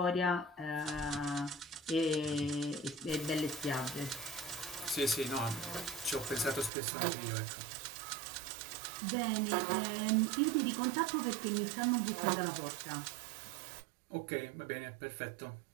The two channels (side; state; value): left; drops out; at 6.7 s